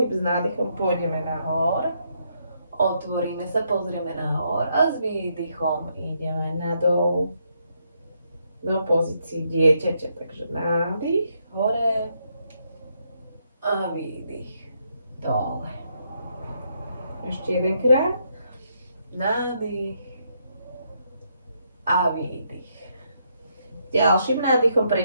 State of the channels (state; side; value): inverted; both; correlation -0.76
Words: S nádychom pôjdeme nahor, otvoríme sa, pozrieme nahor a s výdychom ideme nadol do pozícii dieťaťa. Takže nádych hore a výdych dole. Ešte jedenkrát. Nádych a výdych. Ďalším nádychom